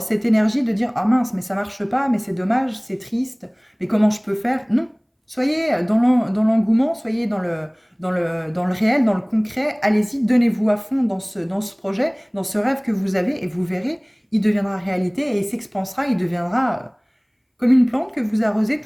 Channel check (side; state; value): both; identical; correlation 1.00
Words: cette énergie de dire « Ah mince, mais ça ne marche pas, mais c'est dommage, c'est triste, mais comment je peux faire ?» Non, soyez dans l'engouement, soyez dans le réel, dans le concret. Allez-y, donnez-vous à fond dans ce projet, dans ce rêve que vous avez et vous verrez, il deviendra réalité et il s'expansera, il deviendra comme une plante que vous arrosez